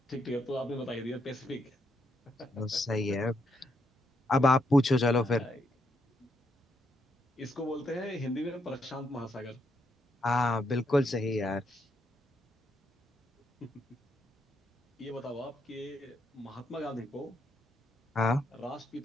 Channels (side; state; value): both; normal; correlation 0.77